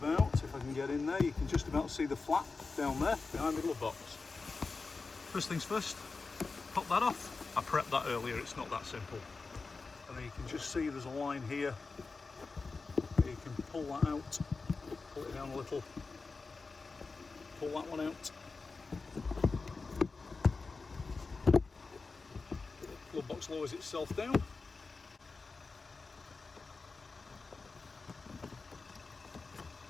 if I can get in there, you can just about see the flap down there behind the glove box. First things first, pop that off. I prepped that earlier, it's not that simple. And then you can just see there's a line here. You can pull that out, pull it down a little, pull that one out. Glove box lowers itself down.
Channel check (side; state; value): right; quieter; 4.2 dB